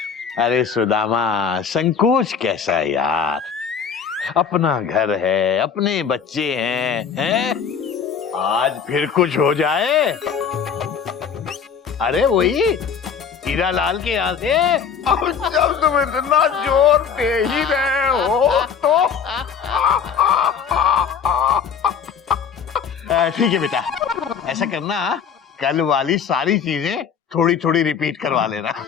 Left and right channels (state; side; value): quieter; right; 6.9 dB